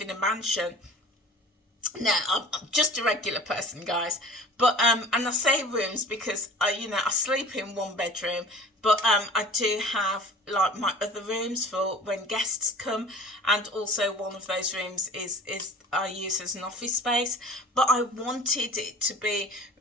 in a mansion. No, I'm just a regular person, guys. But and I say rooms because I sleep in one bedroom, but I do have like my other rooms for when guests come, and also one of those rooms is I use as an office space. But I wanted it to be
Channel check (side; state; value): both; normal; correlation 0.43